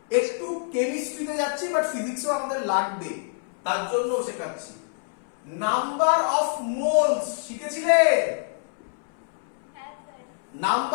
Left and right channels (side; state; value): right; silent; 60 dB below the other